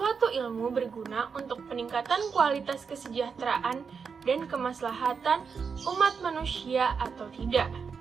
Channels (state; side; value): quieter; left; 5.8 dB